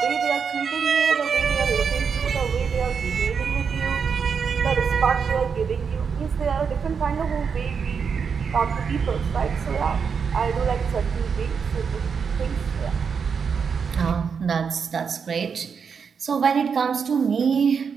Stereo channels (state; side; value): quieter; left; 6.2 dB